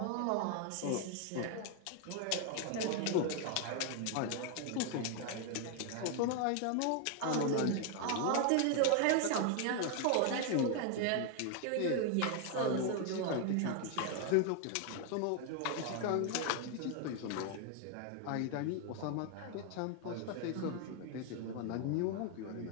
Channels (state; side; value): different; both; correlation 0.00